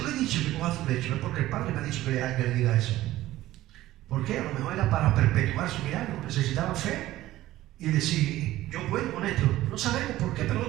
le he dicho que coja su lecho, es porque el Padre me ha dicho que le diga eso. ¿Por qué? A lo mejor era para perpetuar su milagro. Necesitaba fe y decir, yo puedo con esto. No sabemos por qué,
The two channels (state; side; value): quieter; left; 15.5 dB